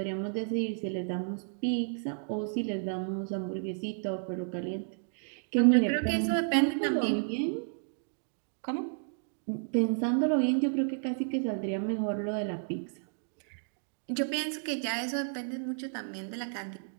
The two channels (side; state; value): left; silent; digital silence